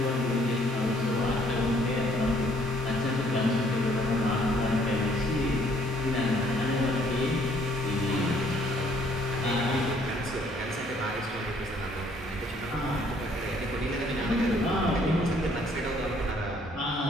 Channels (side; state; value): both; normal; correlation 0.64